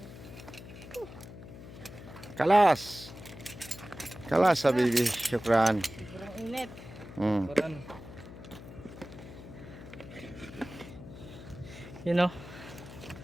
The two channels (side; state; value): left; noise; hum, 14 dB below the sound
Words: Kalas sa baby, syukran. Sobrang init. Mm. You know.